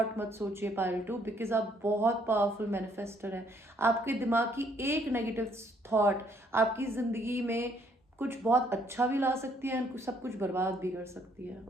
मत सोचिए पाइल 2, बिकॉज आप बहुत पावरफुल मैनिफेस्टर हैं. आपके दिमाग की एक नेगेटिव थॉट आपकी ज़िंदगी में कुछ बहुत अच्छा भी ला सकती है और सब कुछ बर्बाद भी कर सकती है.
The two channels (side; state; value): both; normal; correlation 0.67